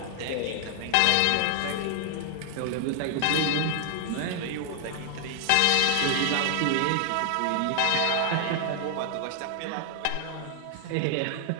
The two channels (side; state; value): both; different; correlation 0.00